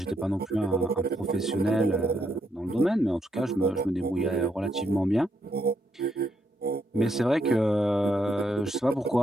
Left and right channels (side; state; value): both; normal; correlation 0.78